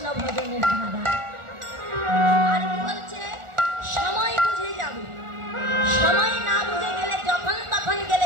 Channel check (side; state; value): left; late; 1.4 ms